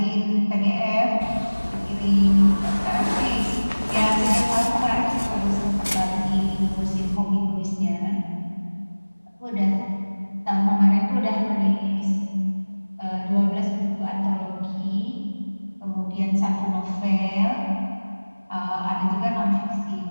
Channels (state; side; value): inverted; both; correlation -1.00